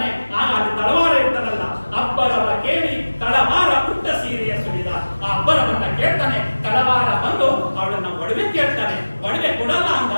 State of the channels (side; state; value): both; inverted; correlation -1.00